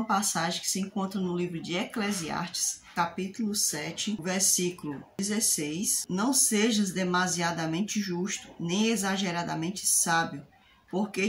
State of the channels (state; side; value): identical; both; correlation 1.00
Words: passagem que se encontra no livro de Eclesiastes, capítulo 7, versículo 16. Não sejas demasiadamente justo, nem exageradamente sábio,